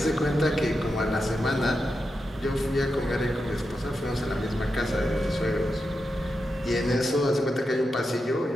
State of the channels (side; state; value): both; normal; correlation 0.88